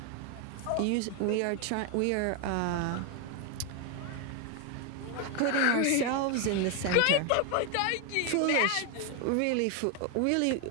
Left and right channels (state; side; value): different; both; correlation 0.01